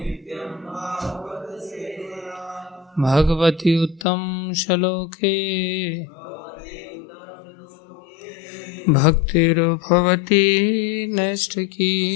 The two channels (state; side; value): drops out; right; at 4.0 s